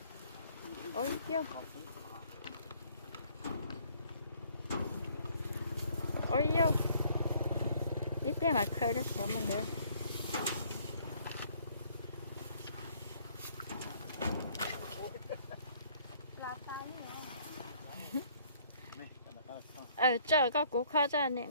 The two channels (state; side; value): inverted; both; correlation -0.62